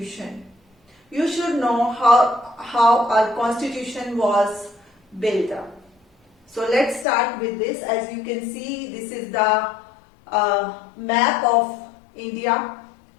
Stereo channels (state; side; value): drops out; right; at 7.1 s